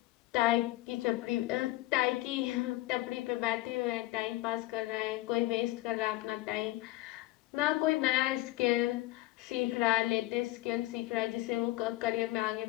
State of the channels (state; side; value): quieter; right; 18.3 dB